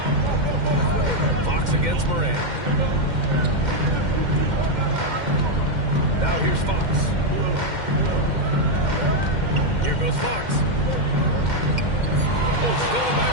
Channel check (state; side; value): late; left; 2.1 ms